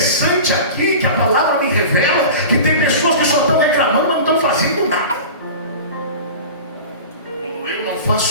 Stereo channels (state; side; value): inverted; both; correlation -0.34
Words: aqui é que a palavra me revela que tem pessoas que só estão reclamando, mas não estão fazendo nada. Quando eu não